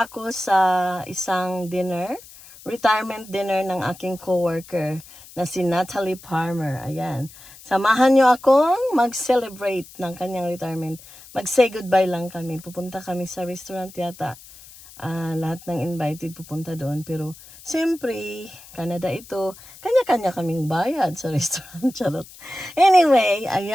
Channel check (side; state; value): left; noise; hiss, 20 dB below the sound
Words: ako sa isang dinner, retirement dinner ng aking coworker na si Natalie Palmer. Ayan. Samahan niyo akong mag-celebrate ng kanyang retirement. Mag-say goodbye lang kami. Pupunta kami sa restaurant yata. Lahat ng invited pupunta doon. Pero, siyempre, Canada ito, kanya-kanya kaming bayad sa restaurant. Charot. Anyway,